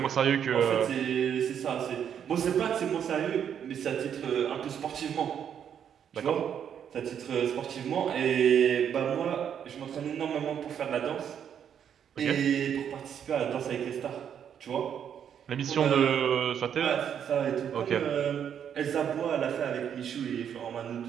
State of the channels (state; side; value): quieter; left; 8.6 dB